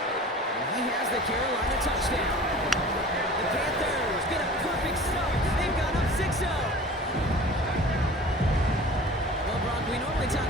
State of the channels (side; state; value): both; normal; correlation 0.42